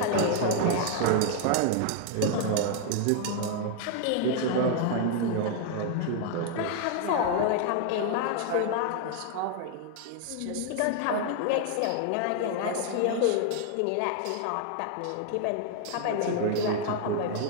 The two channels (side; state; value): both; different; correlation 0.00